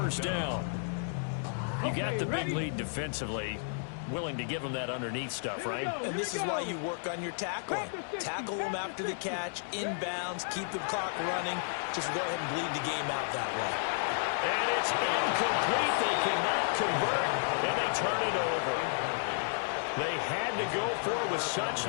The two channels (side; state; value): right; silent; digital silence